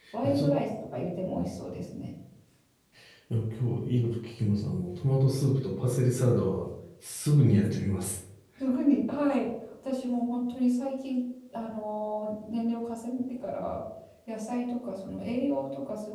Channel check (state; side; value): identical; both; correlation 1.00